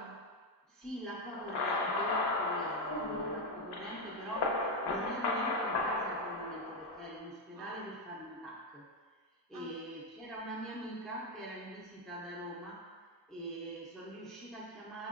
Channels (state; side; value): normal; both; correlation 0.06